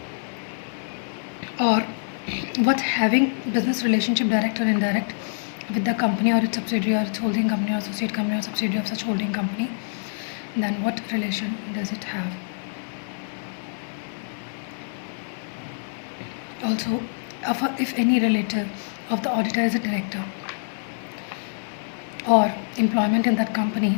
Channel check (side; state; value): right; silent; digital silence